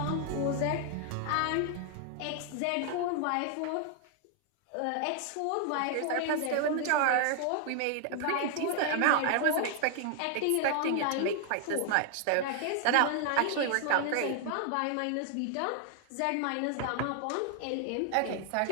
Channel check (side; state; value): both; different; correlation 0.00